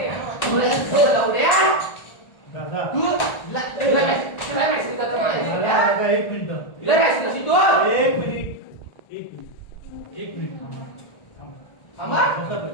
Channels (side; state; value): right; late; 1.4 ms